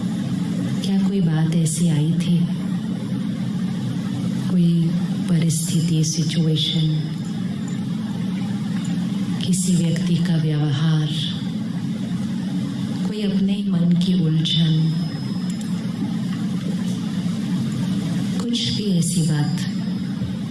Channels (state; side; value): identical; both; correlation 1.00